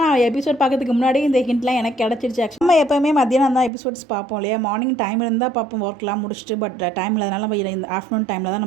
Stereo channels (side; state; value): left; drops out; at 3.7 s